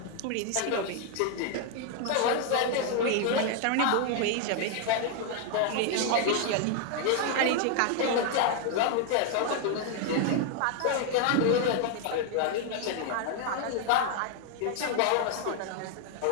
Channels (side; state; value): both; different; correlation 0.01